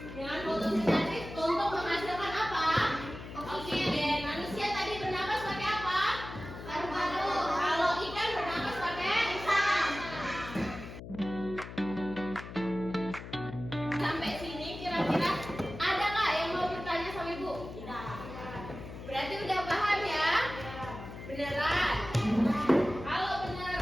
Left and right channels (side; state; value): left; noise; hum, 11 dB below the sound